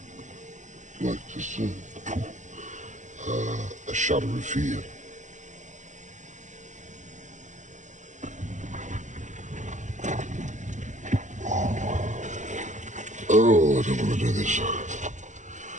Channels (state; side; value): late; left; 0.35 ms